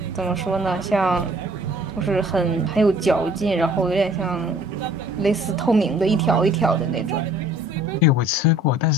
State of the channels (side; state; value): both; normal; correlation 0.54